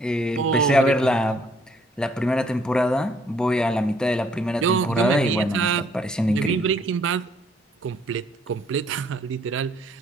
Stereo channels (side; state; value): both; normal; correlation 0.64